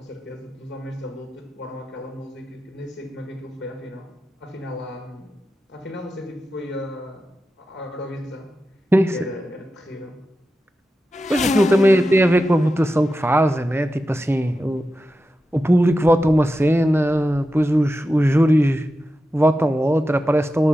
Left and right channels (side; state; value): both; normal; correlation 0.91